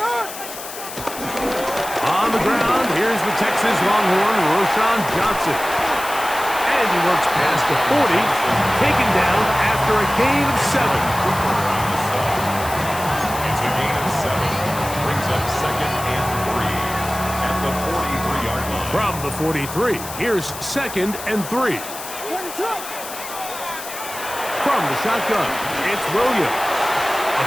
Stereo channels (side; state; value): left; noise; hiss, 11 dB below the sound